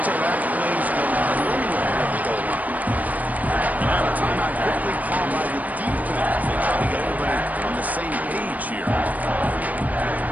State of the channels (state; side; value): late; left; 0.076 ms